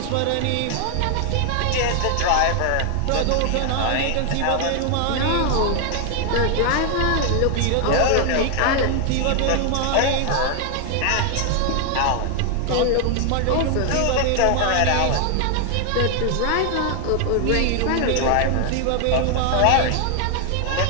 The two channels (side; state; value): both; different; correlation 0.00